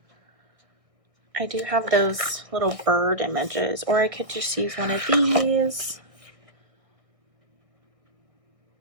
I do have those little bird images, or I could just use one of these.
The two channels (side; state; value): left; late; 1.5 ms